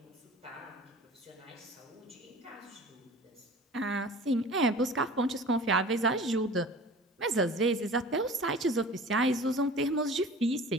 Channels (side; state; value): both; normal; correlation 0.41